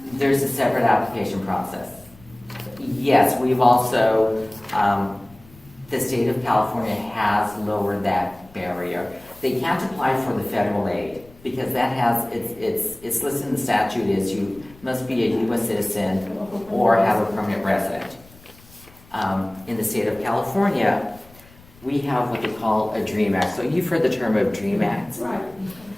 There's a separate application process. Yes, we've also, the state of California has lowered that barrier. They can't apply for the federal aid because that has, it's listed in the statute is you must be a U.S. citizen or have a permanent resident. In the state of California, we have what they call a DREAM Act. So you've heard the term of DREAM Act. Right.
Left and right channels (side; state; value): left; noise; rumble, 24 dB below the sound